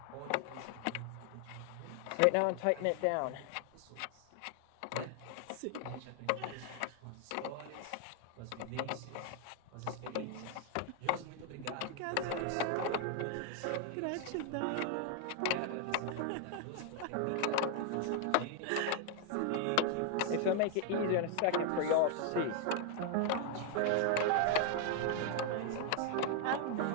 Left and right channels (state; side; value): different; both; correlation 0.00